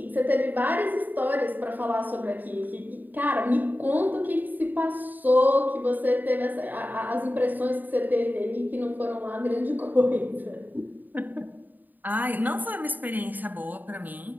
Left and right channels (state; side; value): late; left; 0.087 ms